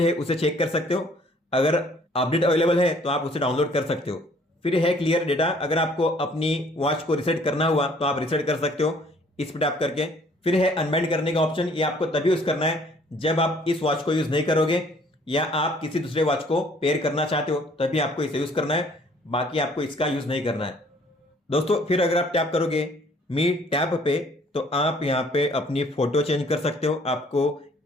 है उसे चेक कर सकते हो, अगर अपडेट अवेलेबल है तो आप उसे डाउनलोड कर सकते हो। फिर है क्लियर डेटा, अगर आपको अपनी वॉच को रिसेट करना हुआ तो आप रिसेट कर सकते हो इस पर टैप करके। फिर है अनबाइंड करने का ऑप्शन, ये आपको तभी यूज करना है जब आप इस वॉच को यूज नहीं करोगे या आप किसी दूसरे वॉच को पेयर करना चाहते हो, तभी आपको इसे यूज करना है, बाकी आपको इसका यूज नहीं करना है दोस्तों। फिर अगर आप टैप करोगे मी टैप पे तो आप यहाँ पे अपनी फोटो चेंज कर सकते हो, आपको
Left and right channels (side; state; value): both; normal; correlation 0.59